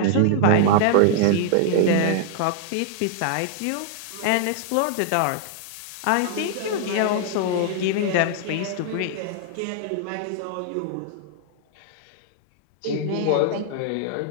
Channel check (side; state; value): both; different; correlation -0.01